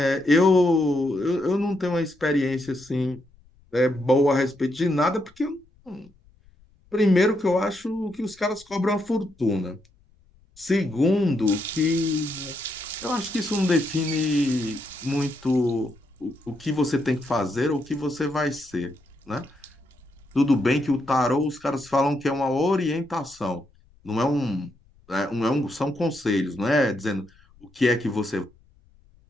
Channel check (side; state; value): left; noise; rumble, 30 dB below the sound